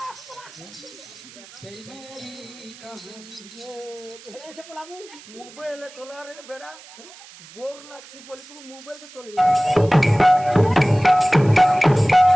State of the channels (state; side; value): noise; right; hiss, 20 dB below the sound